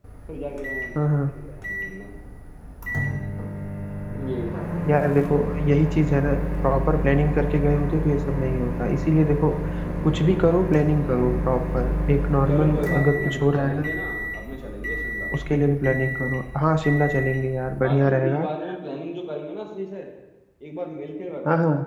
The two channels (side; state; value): both; identical; correlation 1.00